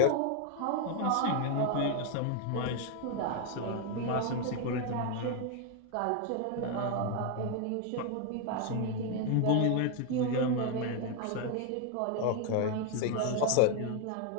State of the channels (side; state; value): both; different; correlation 0.01